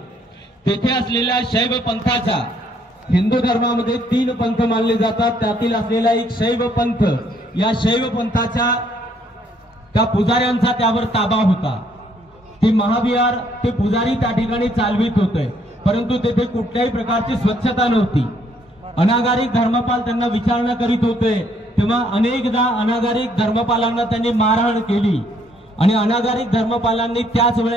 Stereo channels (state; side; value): normal; both; correlation 0.67